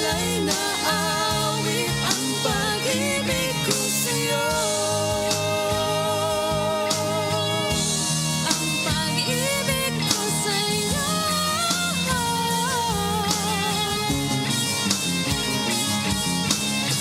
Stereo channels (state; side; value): identical; both; correlation 1.00